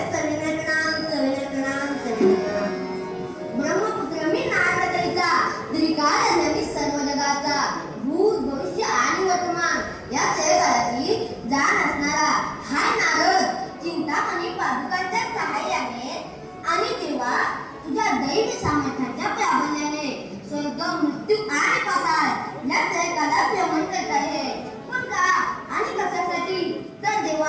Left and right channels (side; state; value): both; identical; correlation 1.00